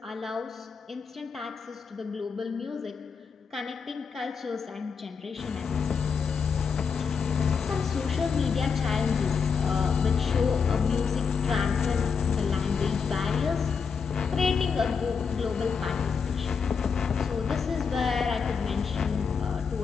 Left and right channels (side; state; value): right; quieter; 5.8 dB